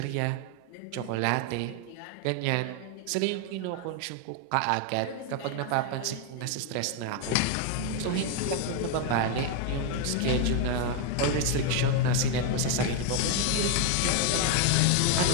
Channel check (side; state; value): both; different; correlation 0.01